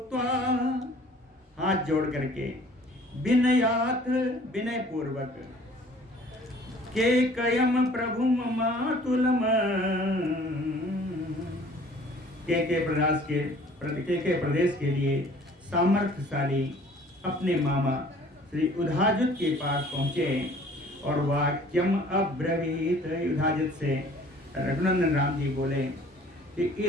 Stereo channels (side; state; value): both; normal; correlation 0.52